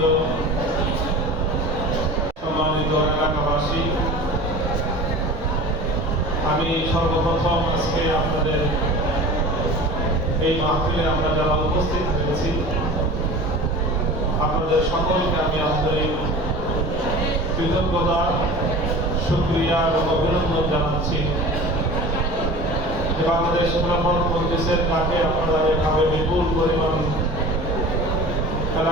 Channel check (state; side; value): normal; both; correlation 0.37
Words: সম্মানিত এলাকাবাসী, আমি সর্বপ্রথম আজকে আপনাদের এই মাহফিলে আমরা যারা উপস্থিত হয়েছি আপনাদের সকলকে আমি আন্তরিক কৃতজ্ঞতা, শুকরিয়া এবং অভিনন্দন জানাচ্ছি। বাংলাদেশ খেলাফত মজলিসের ডাকে আপনারা এভাবে বিপুল পরিমাণ